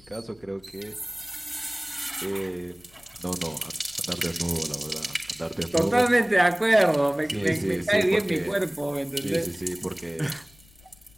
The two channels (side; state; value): left; noise; rumble, 28 dB below the sound